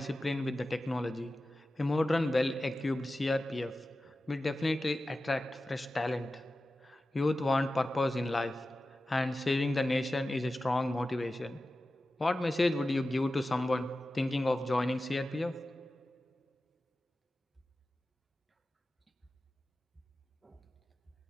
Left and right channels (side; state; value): both; normal; correlation 0.94